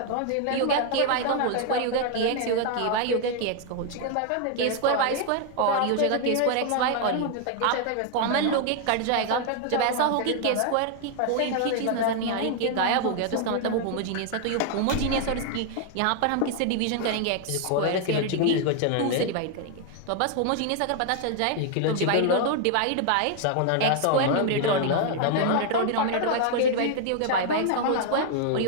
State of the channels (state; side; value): different; both; correlation 0.00